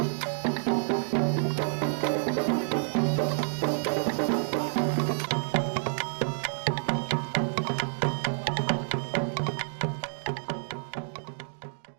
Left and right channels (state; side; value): silent; left; digital silence